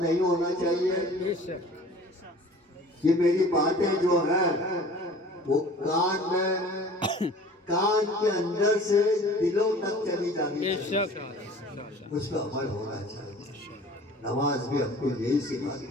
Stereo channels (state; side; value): normal; both; correlation 0.46